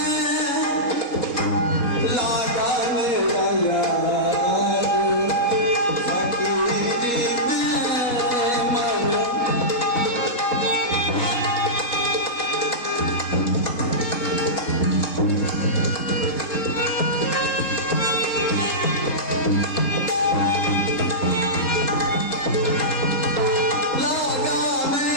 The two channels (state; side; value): late; right; 3.8 ms